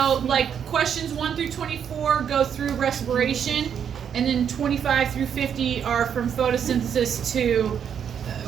like, questions 1 through 24 go through respiration, and then 25 through 50 are from photosynthesis to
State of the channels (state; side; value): quieter; left; 8.1 dB